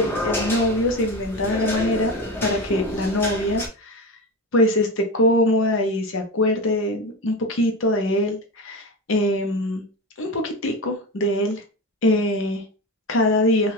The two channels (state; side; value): normal; both; correlation 0.23